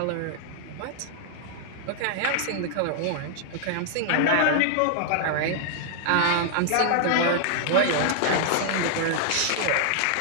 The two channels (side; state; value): both; different; correlation -0.01